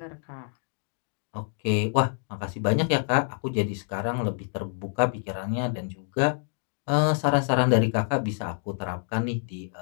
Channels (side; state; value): right; silent; 60 dB below the other